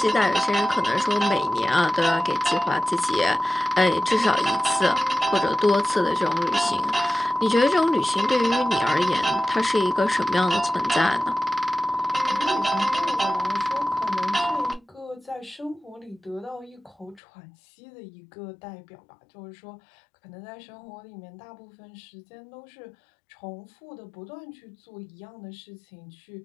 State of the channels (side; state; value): right; drops out; at 17.2 s